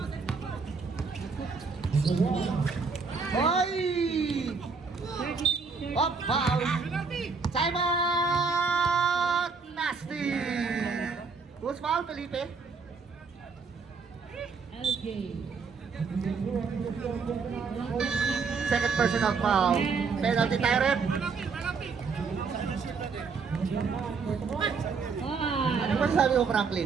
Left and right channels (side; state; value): left; quieter; 5.0 dB